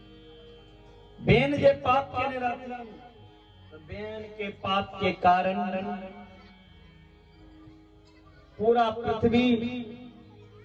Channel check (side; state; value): both; identical; correlation 1.00